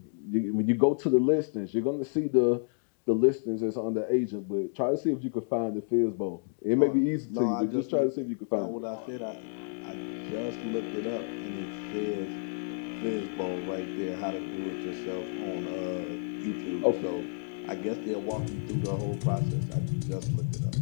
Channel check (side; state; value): right; silent; digital silence